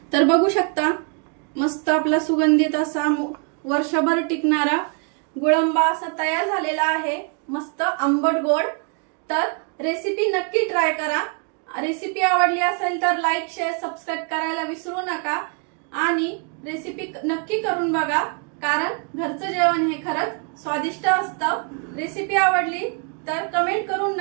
तर बघू शकता मस्त आपला सुगंधित असा वर्षभर टिकणारा गुळांबा असा तयार झालेला आहे, मस्त आंबट गोड। तर रेसिपी नक्की ट्राय करा। रेसिपी आवडली असेल तर लाईक, शेअर, सबस्क्राईब करायला विसरू नका, आणि रेसिपी नक्की करून बघा, कारण घरचं जेवण हे खरंच स्वादिष्ट असतं। रेसिपी आवडली तर कमेंट करून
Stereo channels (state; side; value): quieter; left; 36.8 dB